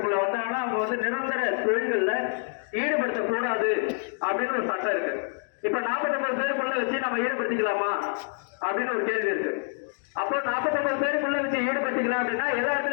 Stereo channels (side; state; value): right; silent; 55 dB below the other